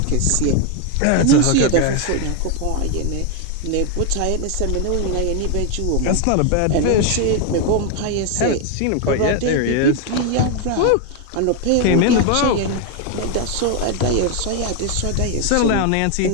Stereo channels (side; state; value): both; different; correlation 0.01